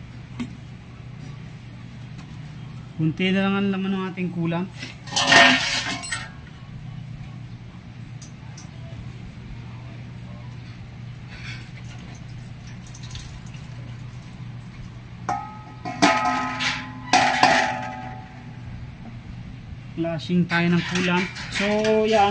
Kunti na lang ang laman ng ating coolant. Flashing tayo ng coolant. So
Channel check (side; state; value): both; identical; correlation 1.00